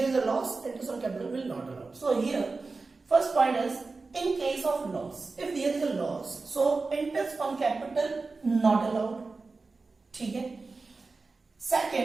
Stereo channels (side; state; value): left; quieter; 3.9 dB